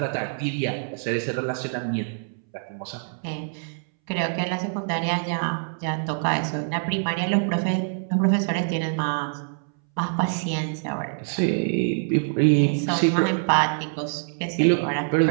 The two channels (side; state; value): left; silent; 62 dB below the other